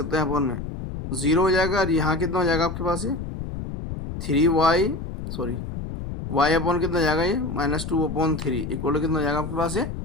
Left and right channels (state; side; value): noise; left; rumble, 7 dB below the sound